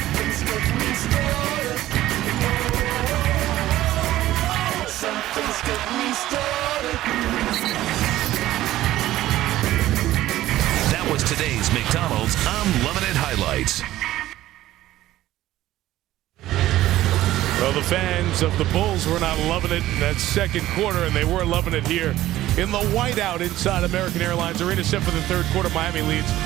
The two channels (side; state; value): left; quieter; 14.9 dB